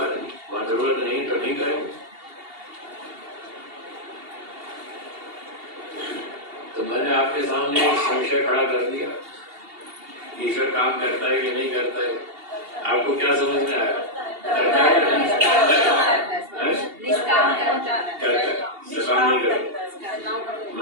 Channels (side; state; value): left; late; 2.8 ms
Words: नहीं, वहां जरूरत नहीं तो नहीं करेंगे। तो मैंने आपके सामने संशय खड़ा कर दिया, ईश्वर काम करता है कि नहीं करता है। आपको क्या समझ में आया? करता है, सकाम नहीं करता।